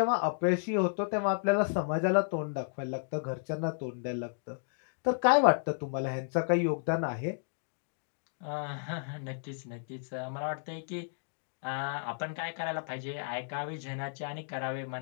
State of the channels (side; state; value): right; silent; digital silence